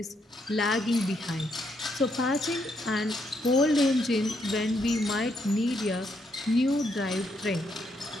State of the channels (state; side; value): normal; both; correlation 0.76